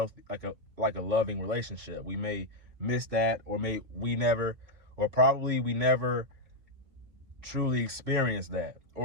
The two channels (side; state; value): left; late; 3.0 ms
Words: like a loving relationship. We may miss that, or probably we never truly experienced that.